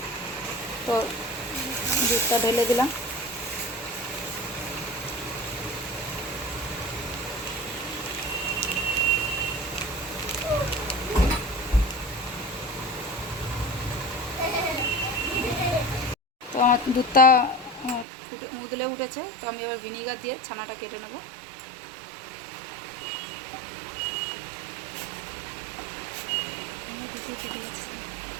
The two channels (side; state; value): left; drops out; at 18.1 s